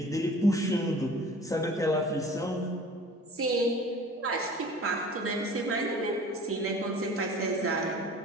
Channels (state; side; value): normal; both; correlation 0.44